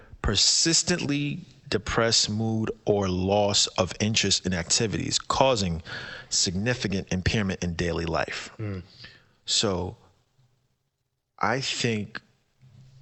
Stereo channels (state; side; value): identical; both; correlation 1.00